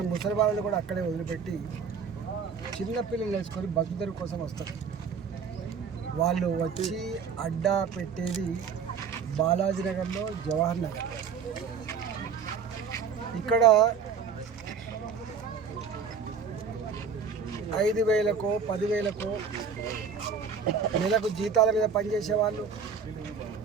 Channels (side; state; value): left; quieter; 6.1 dB